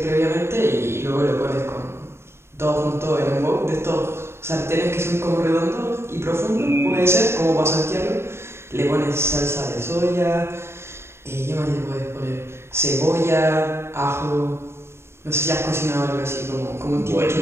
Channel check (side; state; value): left; late; 0.12 ms